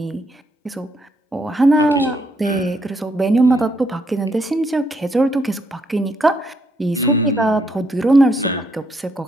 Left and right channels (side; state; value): both; normal; correlation 0.74